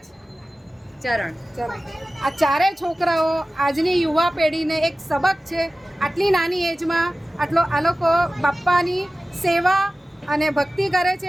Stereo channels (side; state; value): both; normal; correlation 0.96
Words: ચરણ. આ ચારેય છોકરાઓ આજની યુવા પેઢીને એક સબક છે. આટલી નાની એજમાં આ લોકો બાપ્પાની સેવા અને ભક્તિ કરે